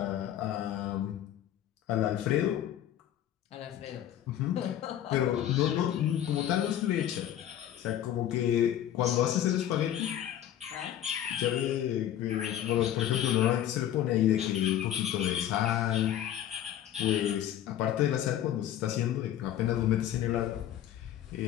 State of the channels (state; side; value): quieter; right; 11.4 dB